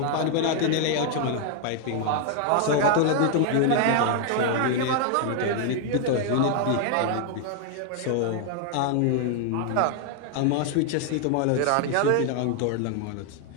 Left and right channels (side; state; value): both; different; correlation 0.00